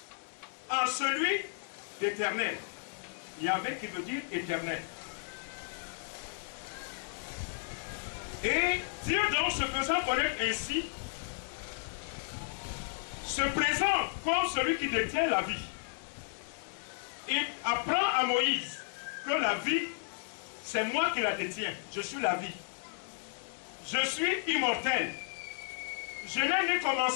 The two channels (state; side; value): silent; right; digital silence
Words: en celui d'éternel. Yahvé qui veut dire éternel. Et Dieu donc se faisant connaître ainsi, se présente comme celui qui détient la vie. Il apprend à Moïse que la vie, c'est moi qui la détiens. Je suis la vie. Je suis immortel. Je n'ai ni